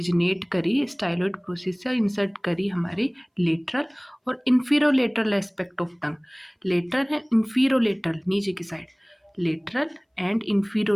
करी, स्टाइलोइड प्रोसेस से इंसर्ट करी हमारी लेटरल और इंफीरोलेटरल एस्पेक्ट ऑफ टंग। लेटरल है, इंफीरोलेटरल नीचे की साइड, लेटरल एंड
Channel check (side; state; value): both; identical; correlation 1.00